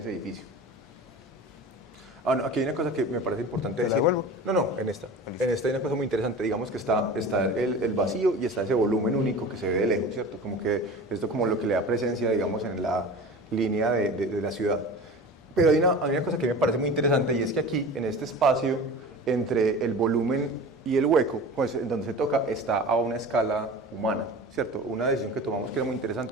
edificio. Ah, no, aquí hay una cosa que me parece importante decir. devuelvo? No, en esta. En esta hay una cosa muy interesante. Digamos que está el vacío y está ese volumen único que se ve de lejos, ¿cierto? Como que esto como lo que le da presencia, digamos, en la línea de la ciudad. Pero hay una cosa que me parece muy interesante y es que aquí, en este espacio, entre el volumen y el hueco, pues en donde se toca, está a una escala humana, ¿cierto? Una decisión que tomamos que era muy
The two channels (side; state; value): both; normal; correlation 0.35